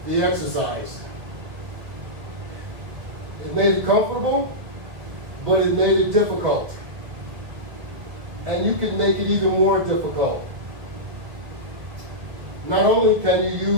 the exercise. It made it comfortable, but it made it difficult. And you can make it even more difficult. Not only can you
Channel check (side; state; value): left; late; 2.0 ms